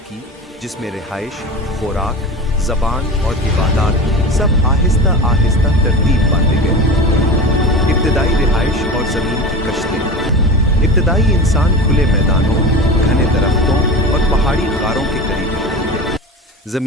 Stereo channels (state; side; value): normal; both; correlation 0.30